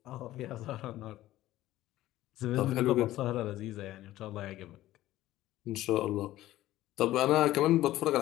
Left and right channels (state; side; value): quieter; right; 15.1 dB